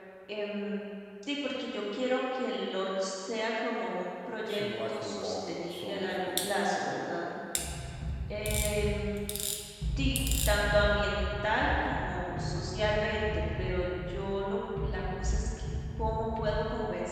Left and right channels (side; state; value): both; identical; correlation 1.00